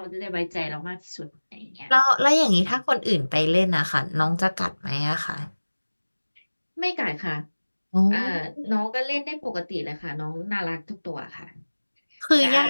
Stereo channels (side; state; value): both; inverted; correlation -1.00